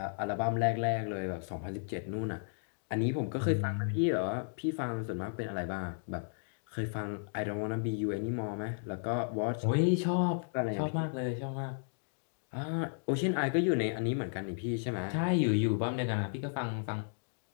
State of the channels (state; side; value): silent; right; digital silence